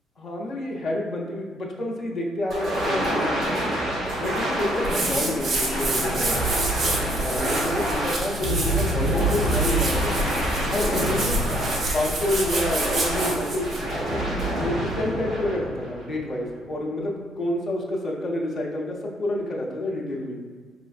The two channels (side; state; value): both; normal; correlation 0.66